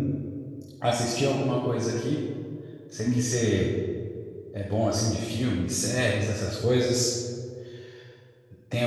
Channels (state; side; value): identical; both; correlation 1.00